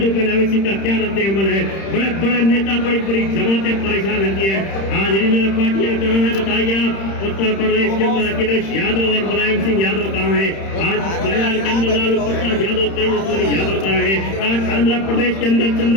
पहले अवैसी का क्या रद्द अमल है। बड़े बड़े नेता बड़ी बड़ी जमातें परेशान रहती है। आज रीजनल पार्टियां कहाँ है बताइए आप। उत्तर प्रदेश के अंदर अखिलेश यादव और मुलायम सिंह यादव कहाँ है? आज बिहार के अंदर लालू प्रसाद यादव, तेजस्वी यादव कहाँ है? आज आंध्र प्रदेश के अंदर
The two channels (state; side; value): late; right; 31 ms